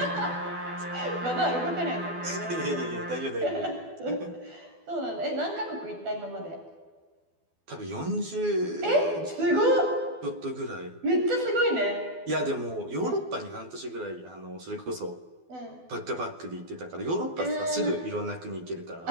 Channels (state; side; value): late; left; 12 ms